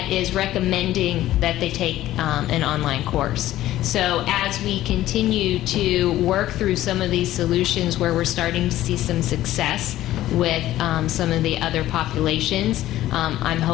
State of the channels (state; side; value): quieter; right; 14.3 dB